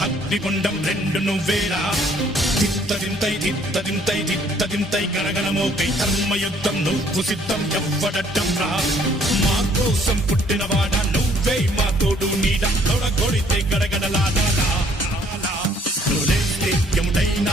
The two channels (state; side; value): normal; both; correlation 0.62